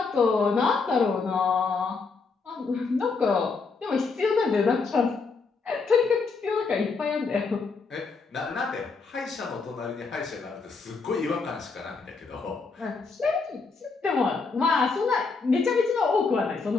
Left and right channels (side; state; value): right; quieter; 4.5 dB